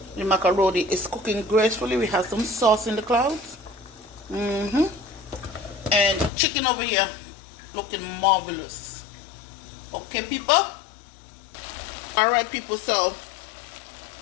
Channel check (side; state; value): right; drops out; at 6.3 s